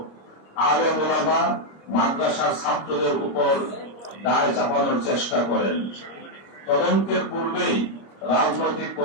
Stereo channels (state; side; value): late; right; 25 ms